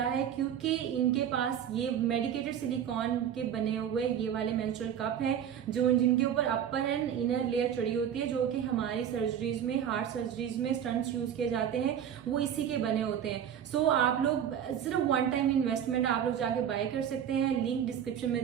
है क्योंकि इनके पास ये मेडिकेटेड सिलिकॉन के बने हुए ये वाले मेंस्ट्रुअल कप हैं जो जिनके ऊपर अपर एंड इनर लेयर चढ़ी होती है, जो कि हमारी सर्जरीज में, हार्ट सर्जरीज में स्टंट्स यूज किए जाते हैं, वो इसी के बने होते हैं। सो आप लोग सिर्फ वन टाइम इन्वेस्टमेंट आप लोग जाके बाय कर सकते हैं, लिंक डिस्क्रिप्शन में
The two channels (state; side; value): quieter; left; 9.2 dB